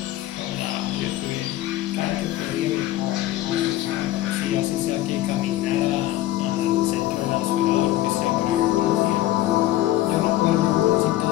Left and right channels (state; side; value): quieter; right; 14.9 dB